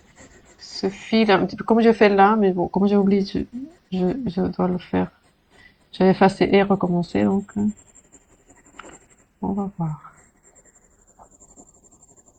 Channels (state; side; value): identical; both; correlation 1.00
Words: ce fil un petit peu comme je fais là, mais bon, comme j'ai oublié, je dois le faire. J'avais effacé et recommencé, donc on va voir.